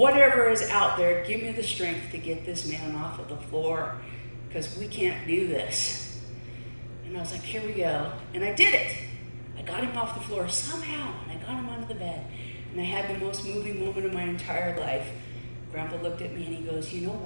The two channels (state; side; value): inverted; both; correlation -1.00